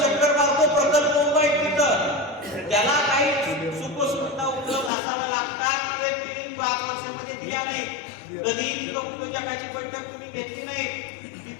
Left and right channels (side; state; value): right; drops out; at 4.9 s